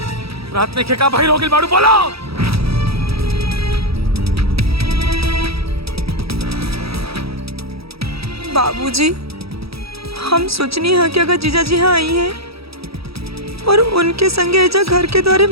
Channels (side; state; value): left; late; 0.77 ms